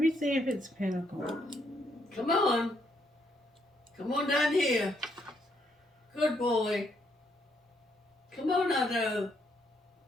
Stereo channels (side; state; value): both; normal; correlation 0.74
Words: see if it's pentacle. Come on. Come on down here. Good boy. Come on, Otto.